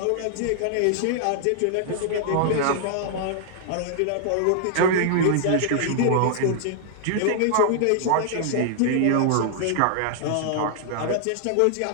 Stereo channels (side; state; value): both; different; correlation -0.01